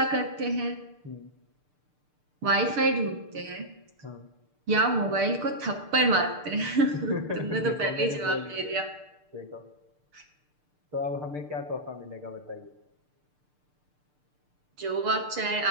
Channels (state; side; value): late; left; 6.7 ms